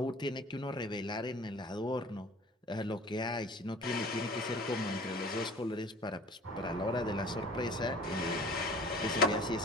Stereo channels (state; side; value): normal; both; correlation 0.45